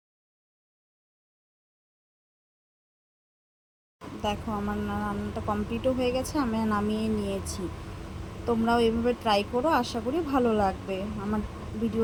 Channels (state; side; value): identical; both; correlation 1.00